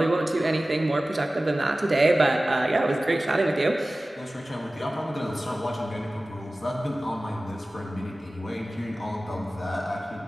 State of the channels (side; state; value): both; normal; correlation 0.97